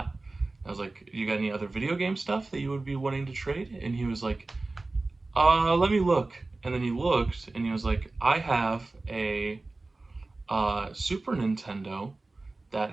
I was like, you got any other video game stuff that you would be wanting to trade? And he was like, let me look. And then he looked, and he was like, I have a Super Nintendo that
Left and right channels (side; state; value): left; quieter; 3.2 dB